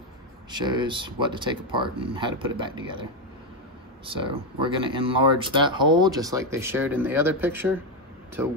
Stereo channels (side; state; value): both; normal; correlation 0.07